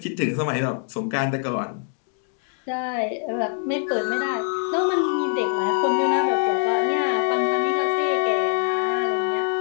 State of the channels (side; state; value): right; silent; 59 dB below the other